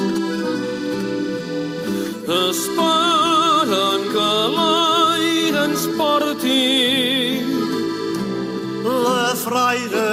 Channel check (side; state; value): both; identical; correlation 1.00